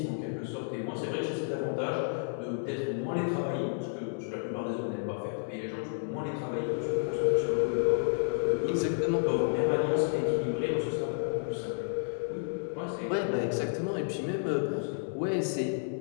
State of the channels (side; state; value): right; silent; digital silence